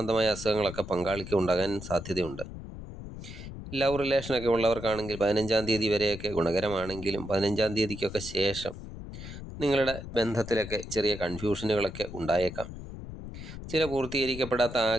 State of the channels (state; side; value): noise; left; rumble, 11 dB below the sound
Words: അസുഖങ്ങളൊക്കെ പങ്കാളിക്ക് ഉണ്ടാകാൻ സാധ്യതയുണ്ട്. ലവ് റിലേഷനൊക്കെ ഉള്ളവർക്കാണെങ്കിൽ 15-ാം തീയതി വരെയൊക്കെ ഗുണകരമാണെങ്കിലും 15-ാം തീയതിക്കൊക്കെ ശേഷം നിങ്ങളുടെ ബന്ധത്തിലൊക്കെ ചെറിയ കൺഫ്യൂഷനുകളൊക്കെ ഉണ്ടായേക്കാം. ചില പൂർത്തീകരിക്കപ്പെടാത്ത